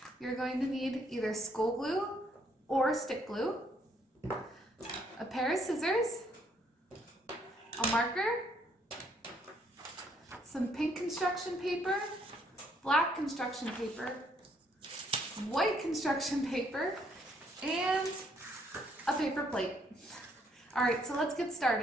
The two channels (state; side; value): normal; both; correlation 0.69